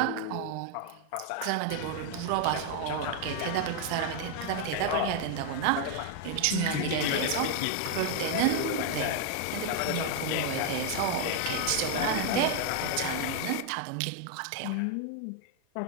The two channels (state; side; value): different; both; correlation 0.00